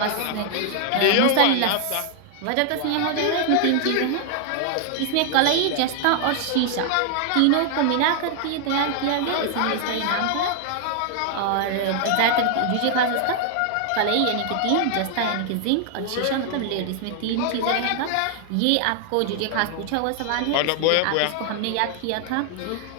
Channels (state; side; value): different; both; correlation 0.00